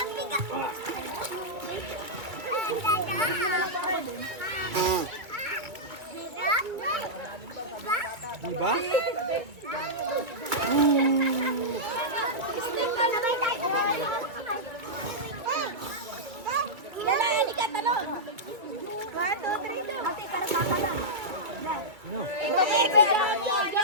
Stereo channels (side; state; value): left; late; 2.3 ms